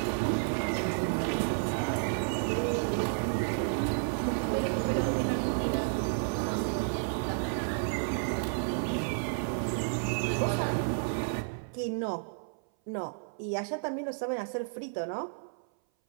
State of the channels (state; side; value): silent; left; 57 dB below the other